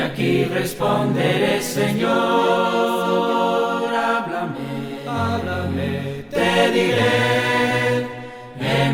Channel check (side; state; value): both; identical; correlation 1.00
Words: responderé, Señor. Háblame, te diré.